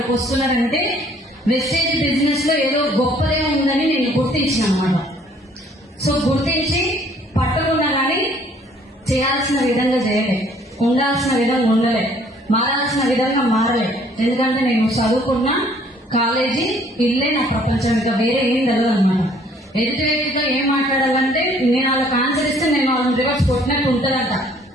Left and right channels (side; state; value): both; normal; correlation 0.60